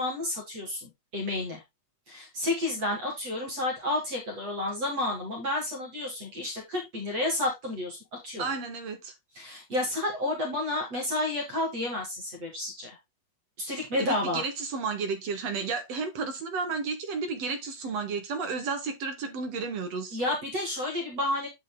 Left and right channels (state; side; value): late; left; 8.1 ms